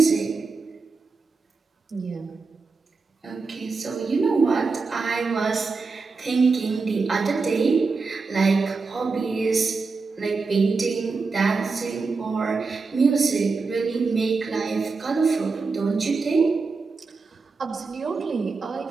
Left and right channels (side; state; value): left; quieter; 4.3 dB